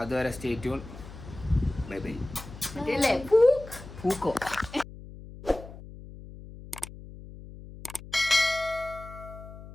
അതുവരെ സ്റ്റേ ട്യൂൺ. Bye bye. പൂക്കോ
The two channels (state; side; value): noise; left; hum, 15 dB below the sound